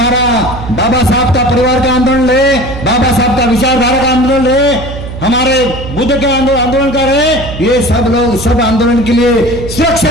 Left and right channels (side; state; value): right; noise; hum, 9 dB below the sound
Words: बाबा साहब का परिवार का आंदोलन रहे, बाबा साहब का विचारधारा का आंदोलन रहे, हमारे बुद्ध के आंदोलन कर रहे, ये सब लोग सब आंदोलन के लिए